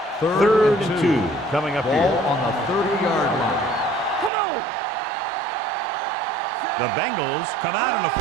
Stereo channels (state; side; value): drops out; left; at 4.3 s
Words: Third and 2 coming up Ball here. on the 30-yard line. Come on. The Bengals come out in a